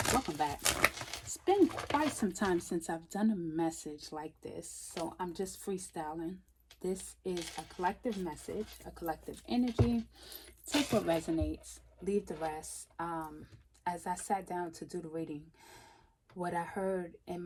welcome back. It's been quite some time since I've done a message like this, so I'm just freestyling. This is a collective message, a collective energy. Take what resonates, leave the rest. As I sat down to do the reading, what I heard in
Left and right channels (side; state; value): both; identical; correlation 1.00